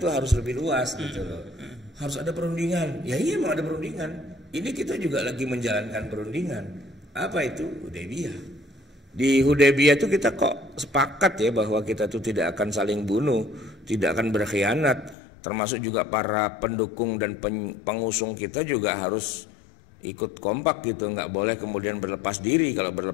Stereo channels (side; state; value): right; drops out; at 15.2 s